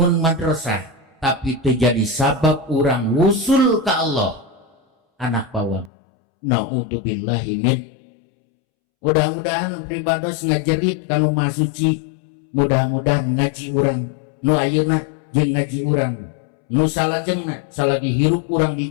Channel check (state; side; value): drops out; right; at 5.9 s